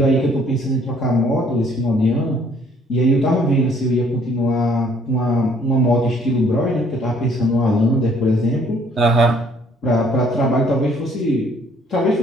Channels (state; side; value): normal; both; correlation 0.62